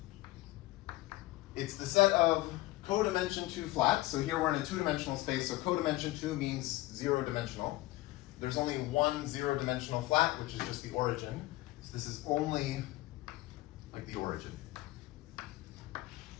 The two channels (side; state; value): right; quieter; 18.5 dB